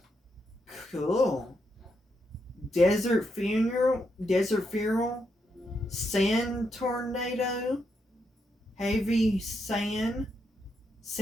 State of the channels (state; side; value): normal; both; correlation 0.81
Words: Cool. Desert funeral. Sand tornado. Heavy sand.